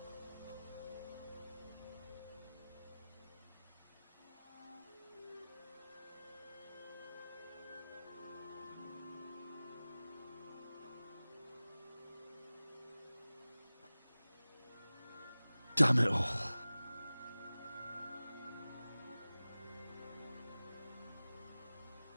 Damn it all.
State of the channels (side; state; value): both; inverted; correlation -0.98